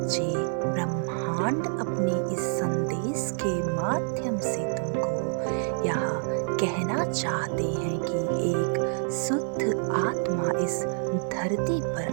ब्रह्मांड अपने इस संदेश के माध्यम से तुमको यह कहना चाहते हैं कि एक शुद्ध आत्मा इस धरती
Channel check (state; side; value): silent; left; digital silence